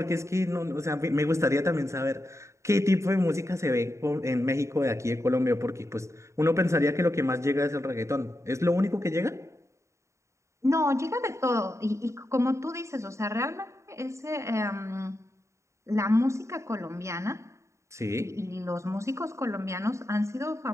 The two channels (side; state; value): left; late; 0.14 ms